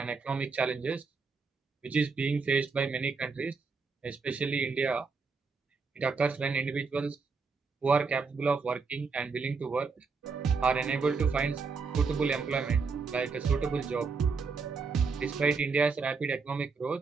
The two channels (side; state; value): left; quieter; 4.8 dB